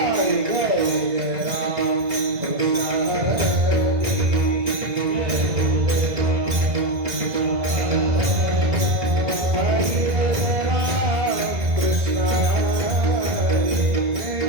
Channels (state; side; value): late; left; 2.0 ms